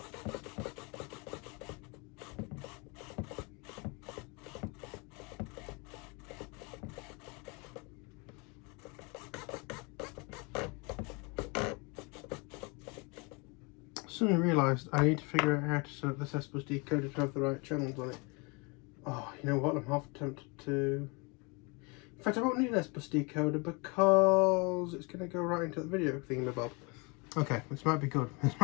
suddenly realised I need to figure out how to set up this S-bus decoder to have the right channels on it. Oh, you know what? I'm half tempted to. In fact, I won't need an S-bus decoder because it's going to go right into the video thingamabob. Okay, this might be good. This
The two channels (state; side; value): quieter; right; 29.9 dB